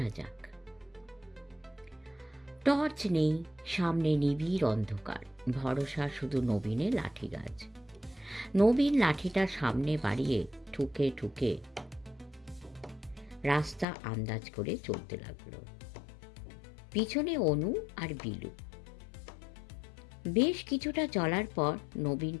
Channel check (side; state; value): right; drops out; at 13.9 s